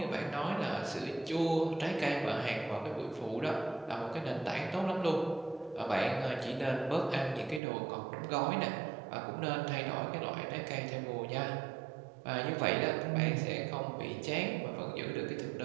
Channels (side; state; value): left; drops out; at 7.6 s